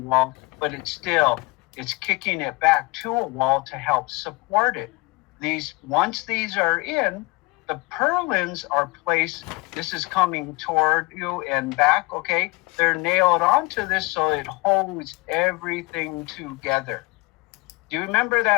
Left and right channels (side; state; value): right; quieter; 25.0 dB